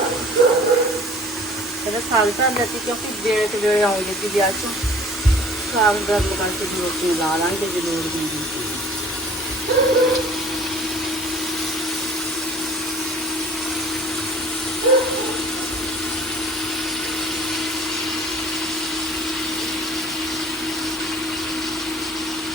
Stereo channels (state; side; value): normal; both; correlation 0.50